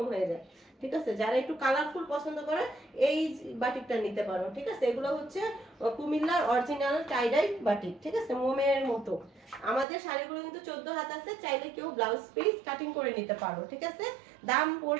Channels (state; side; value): drops out; left; at 9.9 s